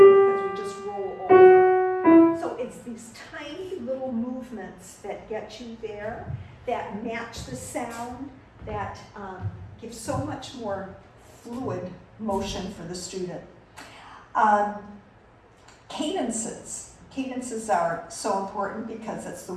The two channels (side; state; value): both; identical; correlation 1.00